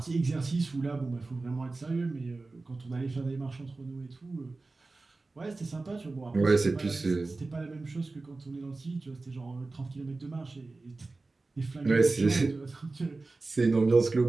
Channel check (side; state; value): left; quieter; 3.5 dB